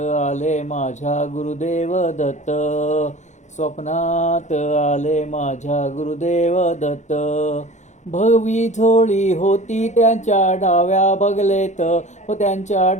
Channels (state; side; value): late; right; 0.34 ms